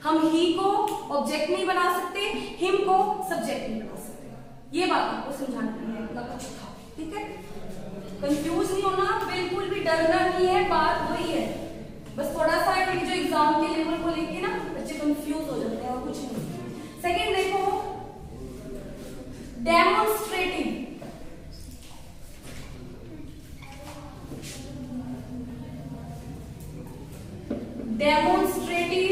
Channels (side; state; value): both; identical; correlation 1.00